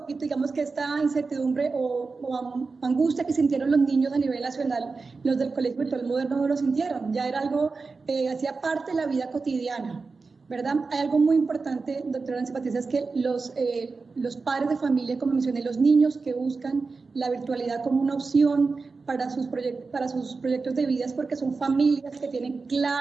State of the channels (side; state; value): left; quieter; 4.3 dB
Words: digamos que esta incertidumbre o angustia que sintieron los niños a nivel nacional, los del Colegio Virtual Moderno no lo sintieron. Ya era algo, hacía parte de la vida cotidiana, ¿verdad? Hay algo muy importante, doctora Nancy Patricia, es que los padres de familia, como mencioné, los niños que buscan la virtualidad como una opción para sus proyectos de vida, es porque son familias que tienen